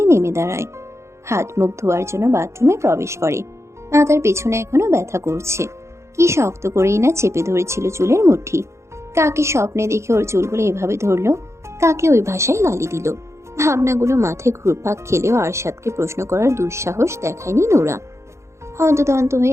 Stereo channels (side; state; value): left; late; 0.14 ms